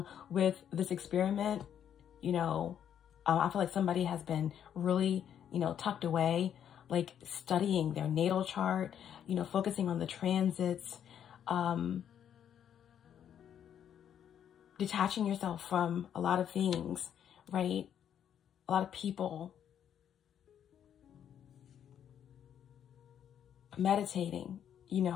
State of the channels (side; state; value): right; quieter; 9.3 dB